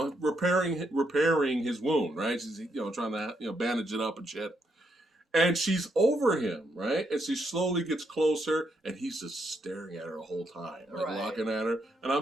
repairing his wound, right? She's trying to bandage it up and shit. And she's over him, right? And she slowly gets closer, and he's just staring at her the whole time, looking at her. And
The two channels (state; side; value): normal; both; correlation 0.77